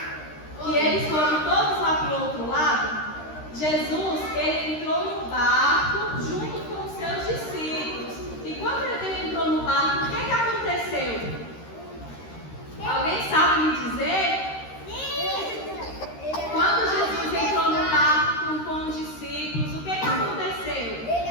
Que eles foram todos lá para o outro lado? Jesus, ele entrou no barco junto com os seus discípulos. E quando ele entrou no barco, o que aconteceu? Alguém sabe me dizer? Quando Jesus entrou no barco com os discípulos, o que aconteceu?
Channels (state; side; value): late; right; 13 ms